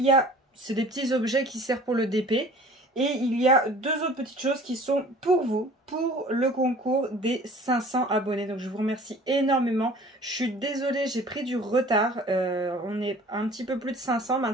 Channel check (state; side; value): normal; both; correlation 0.47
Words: y a, c'est des petits objets qui servent pour le DP, et il y a deux autres petites choses qui sont pour vous, pour le concours des 500 abonnés. Donc je vous remercie énormément. Je suis désolée, j'ai pris du retard. On est un petit peu plus de 500